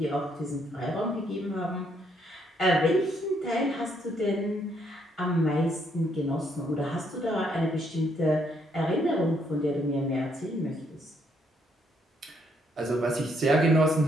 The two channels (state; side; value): normal; both; correlation 0.72